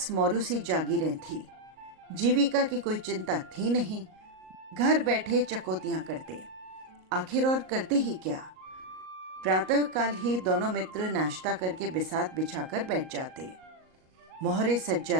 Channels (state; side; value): late; left; 38 ms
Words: मौरूसी जागीरें थी, जीविका की कोई चिंता थी नहीं, घर बैठे चकोतियां करते। आखिर और करते ही क्या। प्रातः काल ही दोनों मित्र नाश्ता करके बिसात बिछाकर बैठ जाते, मोहरे सज